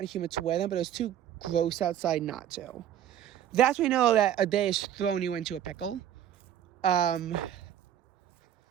and humid to wear them, but it was too gross outside not to. That's when you know that a day is throwing you into a pickle.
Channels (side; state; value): left; quieter; 10.6 dB